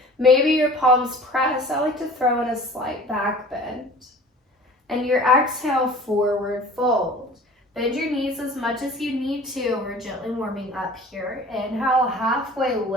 Maybe your palms press. I like to throw in a slight back bend. And your exhale, forward fold. Bend your knees as much as you need to. We're gently warming up here. Inhale, halfway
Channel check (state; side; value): normal; both; correlation 0.44